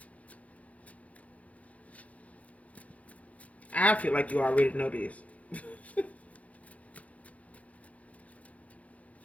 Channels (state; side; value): late; right; 0.067 ms